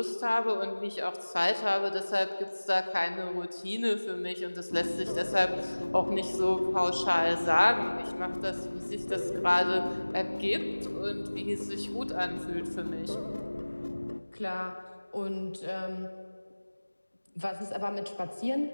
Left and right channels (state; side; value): inverted; both; correlation -1.00